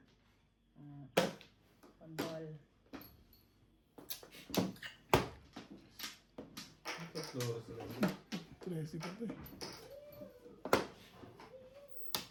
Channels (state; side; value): identical; both; correlation 1.00